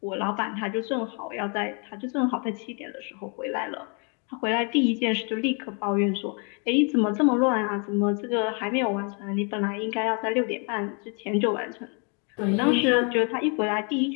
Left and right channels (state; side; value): quieter; right; 36.8 dB